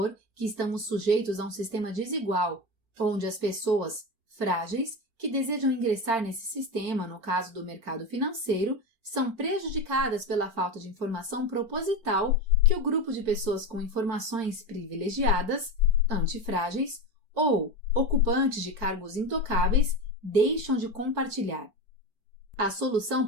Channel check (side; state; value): left; late; 4.4 ms